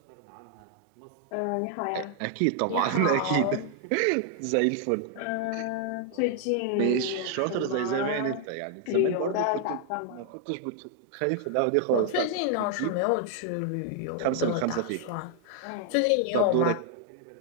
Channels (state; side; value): different; both; correlation 0.00